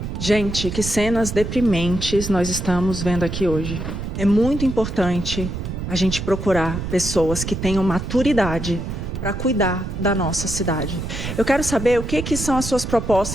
Gente, que cenas deprimentes nós estamos vendo aqui hoje. É muito importante a gente procurar pessoas que tenham maturidade para cuidar da nossa cidade. Eu quero saber o que são as suas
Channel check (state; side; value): noise; right; rumble, 5 dB below the sound